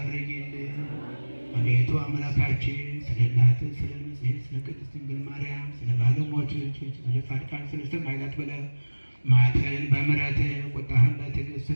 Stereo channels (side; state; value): both; inverted; correlation -1.00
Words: አቤቱ አምላካችን ስለ እናትህ ስለ ንጽሕት ስለ ቅድስት ድንግል ማርያም ስለ ባለሟሎችህ ስለ ጻድቃን ስለ ሰማዕታት ብለህ መዓትህን በምሕረትህ ቁጣህን በትዕግስት